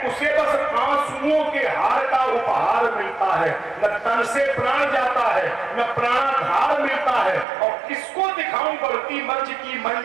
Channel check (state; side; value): drops out; left; at 7.5 s